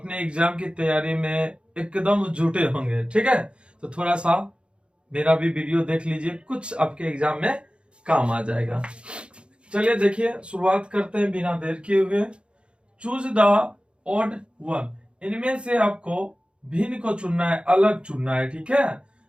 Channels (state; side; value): late; left; 0.056 ms